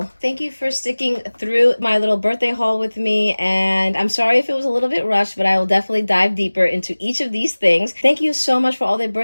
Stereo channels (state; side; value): inverted; both; correlation -1.00